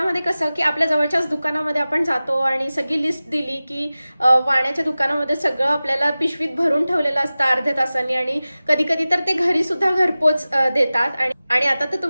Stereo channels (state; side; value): inverted; both; correlation -0.97